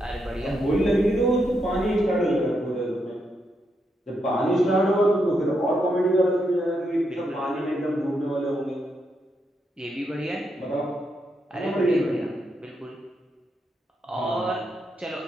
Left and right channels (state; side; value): normal; both; correlation 0.81